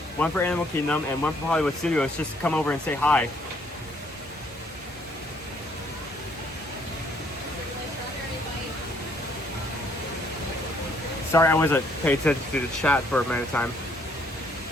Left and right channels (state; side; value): normal; both; correlation 0.66